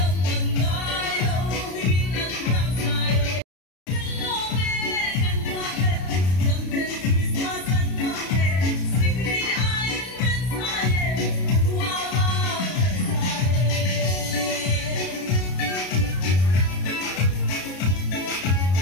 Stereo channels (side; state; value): right; late; 33 ms